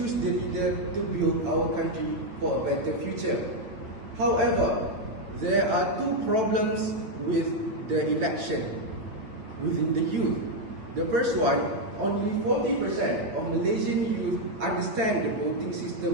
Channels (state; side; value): late; left; 9.0 ms